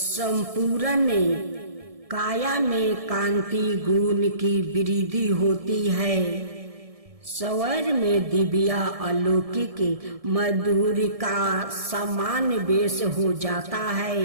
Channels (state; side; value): late; left; 1.7 ms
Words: काया में कांति गुण की वृद्धि होती है। स्वर में दिव्या अलौकिक मधुर का समान वेश हो जाता